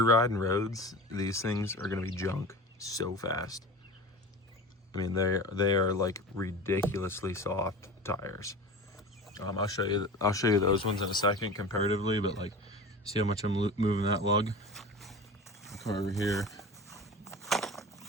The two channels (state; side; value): normal; both; correlation 0.33